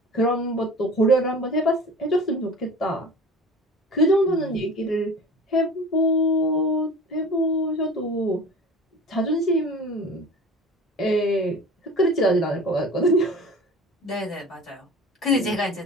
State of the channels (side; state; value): both; normal; correlation 0.39